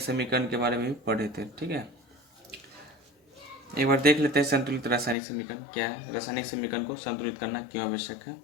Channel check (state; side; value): drops out; right; at 5.2 s